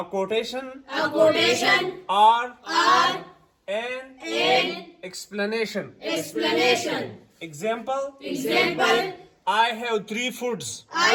quotation or an explanation. Example. I have three foods.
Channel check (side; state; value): both; identical; correlation 1.00